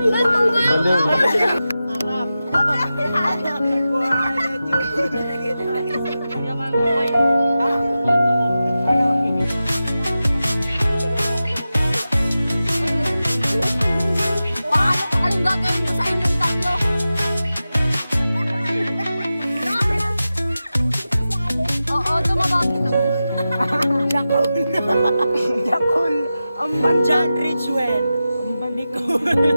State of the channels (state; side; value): inverted; both; correlation -0.93